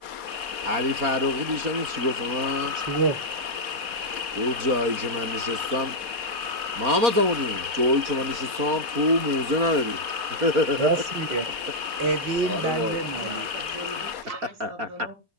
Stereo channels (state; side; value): late; left; 4.2 ms